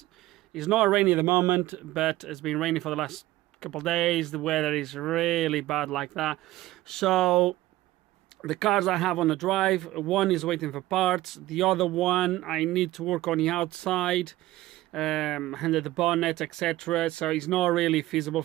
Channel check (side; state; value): left; quieter; 16.6 dB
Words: not rainy at the moment, but it's been raining for the last couple of days. The weather is really bad like that. So the cars I have on the drive, one is waiting for parts, the other one I need to work on the outside, under the bonnet, etc. So it's not really feasible